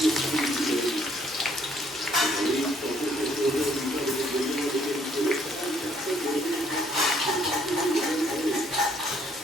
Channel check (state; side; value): normal; both; correlation 0.66